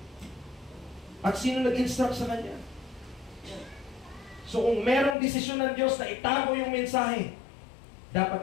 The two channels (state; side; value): drops out; right; at 5.2 s